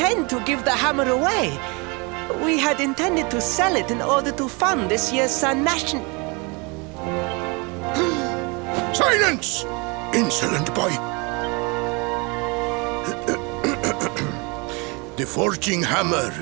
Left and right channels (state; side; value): quieter; left; 29.5 dB